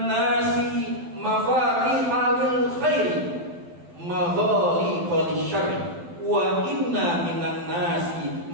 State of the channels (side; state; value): left; late; 12 ms